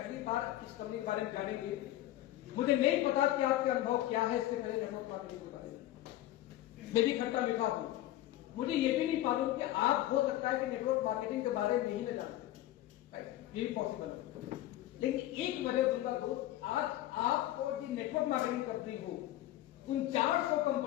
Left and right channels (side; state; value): right; quieter; 14.5 dB